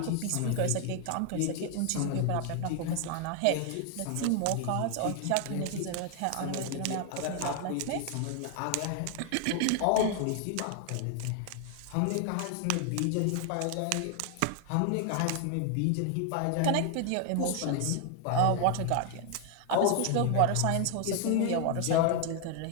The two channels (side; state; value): both; different; correlation 0.00